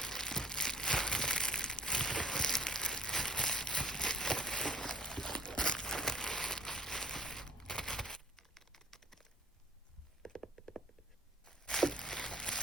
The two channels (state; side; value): normal; both; correlation 0.50